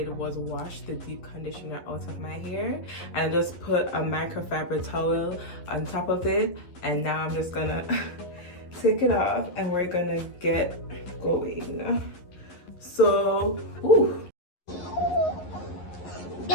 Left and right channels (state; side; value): late; right; 11 ms